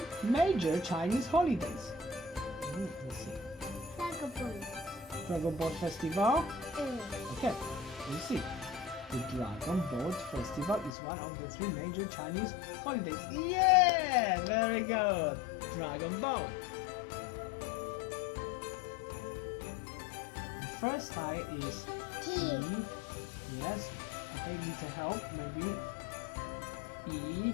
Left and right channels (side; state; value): right; drops out; at 10.9 s